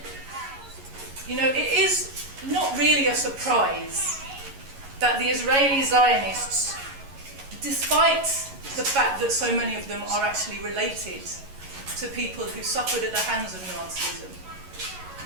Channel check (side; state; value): left; late; 11 ms